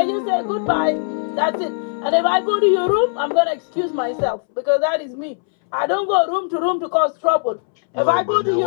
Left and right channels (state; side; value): silent; right; 66 dB below the other